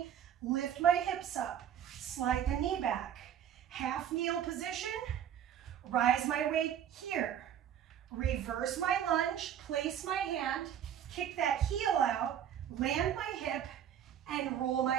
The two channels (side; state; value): left; quieter; 9.6 dB